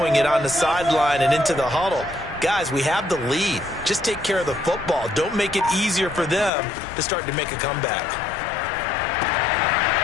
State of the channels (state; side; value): drops out; right; at 6.5 s